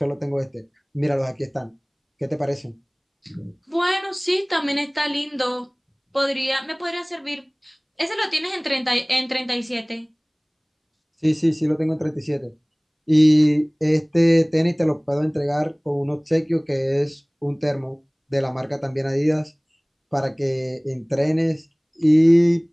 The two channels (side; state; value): both; identical; correlation 1.00